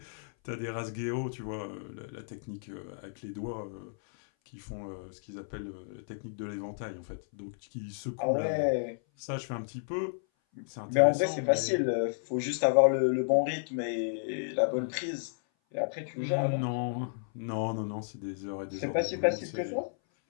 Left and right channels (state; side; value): silent; right; 56 dB below the other